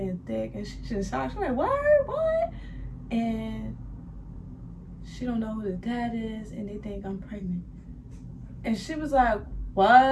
thick. And she just shocked. She's like, what? And she don't know who the dad is and they think I'm pregnant. And she was like,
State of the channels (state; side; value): identical; both; correlation 1.00